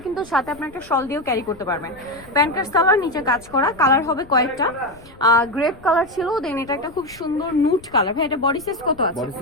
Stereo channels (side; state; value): left; noise; rumble, 22 dB below the sound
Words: কিন্তু সাথে আপনার একটা শল দিয়েও ক্যারি করতে পারবেন। প্যান্ট কাট সালোয়ার, নিচে কাজ করা, কালার হবে কয়েকটা। গ্রেপ কালার ছিল, দেন এটা একটা খুব সুন্দর নুট কালার। ভাই এটা বডি সাইজ কত আছে? বডি